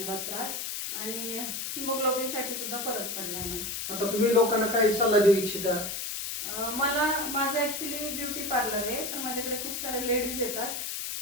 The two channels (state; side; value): noise; left; hiss, 4 dB below the sound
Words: त्रास. आणि हिमोग्लोबिन साठी सुद्धा फरक पडलाय मला. आता तुम्ही लोकांना काही सल्ला देऊ इच्छिता? माझं ऍक्च्युली ब्युटी पार्लर आहे, तर माझ्याकडे खूप सारे लेडीज येतात.